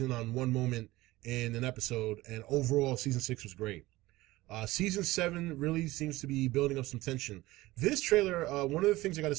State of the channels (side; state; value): left; quieter; 18.6 dB